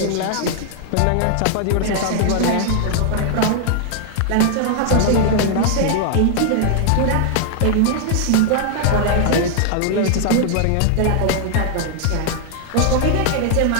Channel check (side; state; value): both; different; correlation 0.00